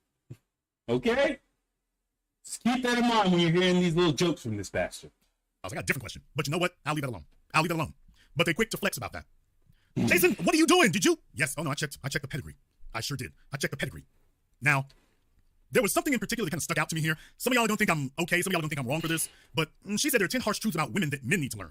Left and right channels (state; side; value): identical; both; correlation 1.00